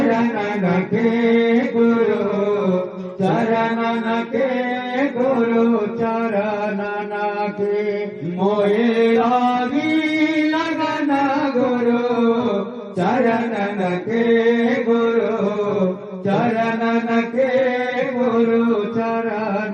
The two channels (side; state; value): both; identical; correlation 1.00